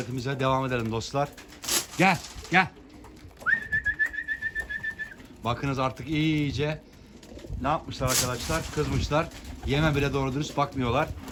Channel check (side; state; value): both; identical; correlation 1.00